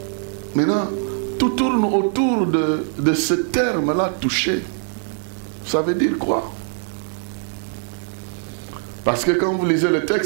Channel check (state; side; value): silent; left; 55 dB below the other